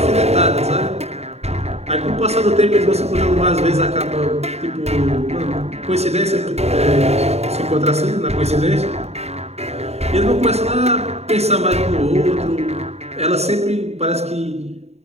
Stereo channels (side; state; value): left; late; 0.31 ms